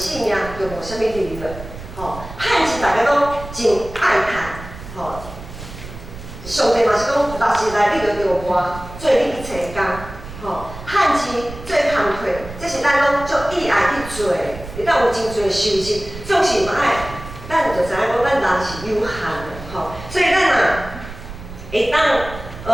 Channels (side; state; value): right; noise; rumble, 13 dB below the sound